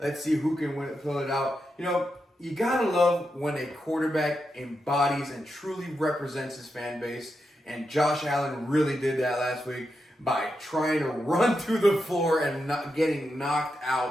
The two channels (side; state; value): both; normal; correlation 0.86